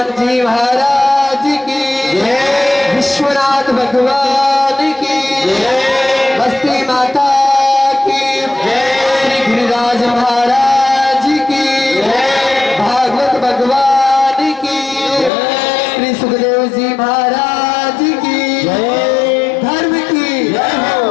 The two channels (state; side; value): drops out; right; at 15.3 s